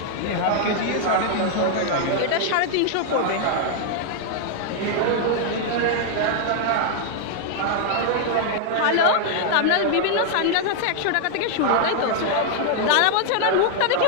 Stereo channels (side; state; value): both; different; correlation 0.00